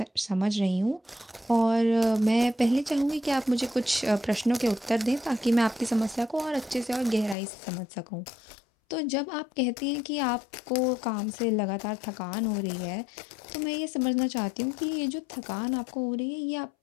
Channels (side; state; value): right; drops out; at 7.4 s